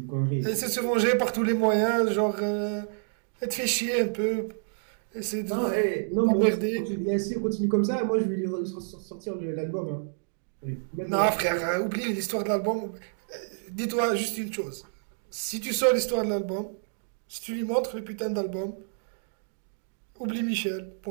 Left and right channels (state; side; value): silent; left; digital silence